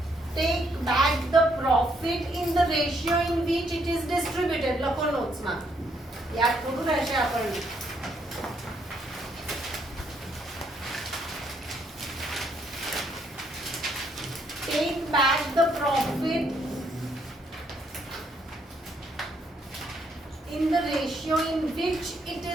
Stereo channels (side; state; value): both; normal; correlation 0.72